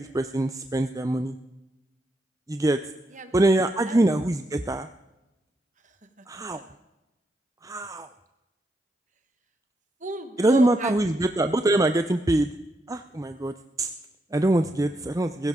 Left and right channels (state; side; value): normal; both; correlation 0.81